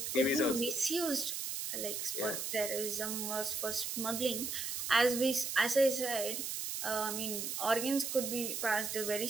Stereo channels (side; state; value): right; noise; hiss, 3 dB below the sound